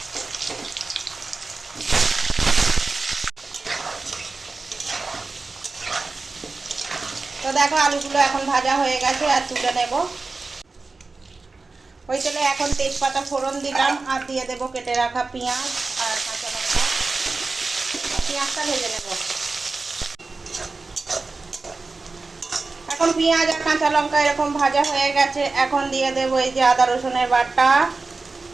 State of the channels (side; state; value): left; quieter; 3.8 dB